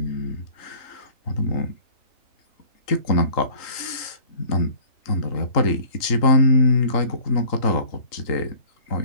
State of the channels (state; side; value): late; right; 3.8 ms